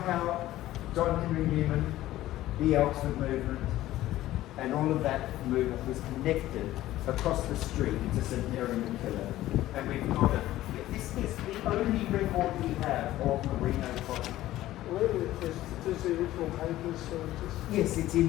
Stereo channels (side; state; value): right; quieter; 15.0 dB